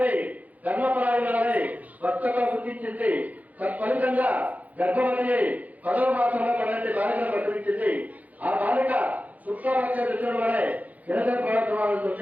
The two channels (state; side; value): late; left; 0.076 ms